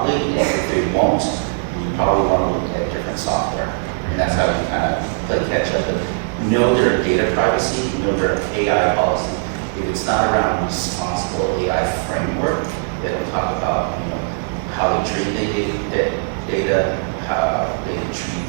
and if they won't, you probably want to look at different software. And that's how you kind of play catch up. But know their data privacy, know their AI policy. If it's not around responsible AI framework, they don't talk about how they treat the data, how they treat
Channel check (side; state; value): left; silent; digital silence